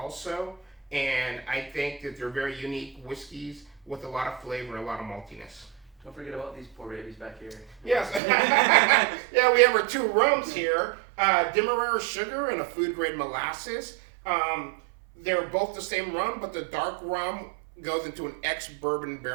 And I think that they're very unique whiskeys with a lot of flavor and a lot of maltiness. Don't forget about these poor babies back here. Yes. Yeah, we have our two rums here. Demerara sugar and a food grade molasses. They're both the same rum, but the dark rum goes into an ex-bourbon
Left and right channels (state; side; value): drops out; left; at 8.2 s